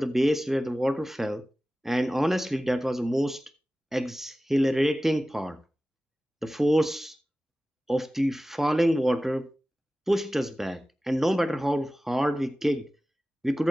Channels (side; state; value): both; normal; correlation 0.96